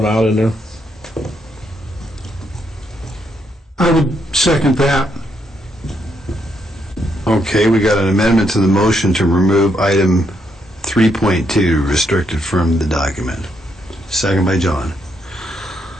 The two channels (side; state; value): both; normal; correlation 0.77